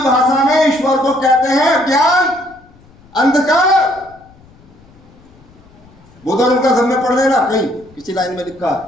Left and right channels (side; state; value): left; noise; rumble, 27 dB below the sound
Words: भाषा में ईश्वर को कहते हैं ज्ञान अंधकार। बुद्ध और उनका धब्बा पढ़ लेना, कहीं किसी लाइन में लिखा